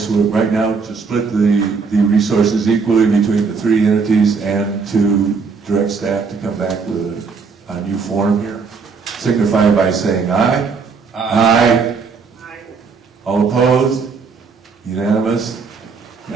we're right now to split the resources equally between the three entities and to direct staff to come back with a new form here, signify by saying aye. Aye. All opposed? Unanimous?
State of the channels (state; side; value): quieter; left; 5.0 dB